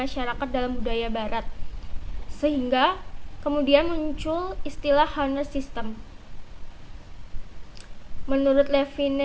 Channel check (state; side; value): identical; both; correlation 1.00